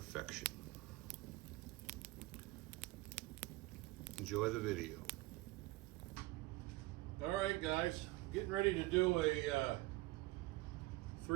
Enjoy the video. All right, guys, getting ready to do a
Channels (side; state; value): left; quieter; 20.7 dB